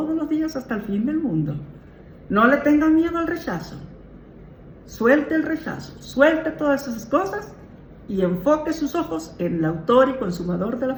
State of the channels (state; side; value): identical; both; correlation 1.00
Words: los días hasta el fin del mundo. No le tengan miedo al rechazo. Suelte el rechazo, suelte todas esas cosas y enfoque sus ojos en el autor y consumador de la